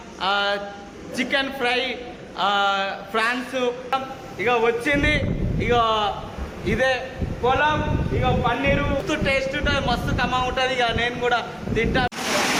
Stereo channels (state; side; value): identical; both; correlation 1.00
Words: chicken fry, prawns ఇక వచ్చింది. ఇక ఇదే పులావ్, ఇక పన్నీరు టేస్ట్ ఉంటుంది, మస్తు కమ్మగా ఉంటుంది. ఇక నేను కూడా తింటా.